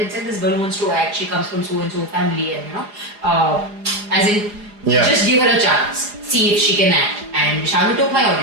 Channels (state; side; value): late; left; 4.9 ms